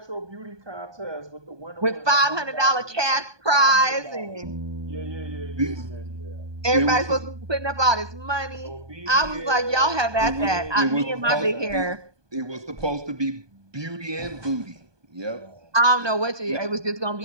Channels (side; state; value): left; late; 1.2 ms